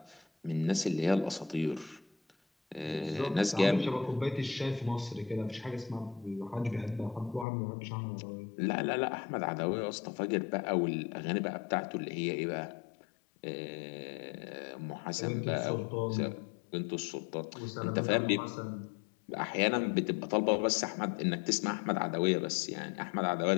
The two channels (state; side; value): drops out; right; at 7.5 s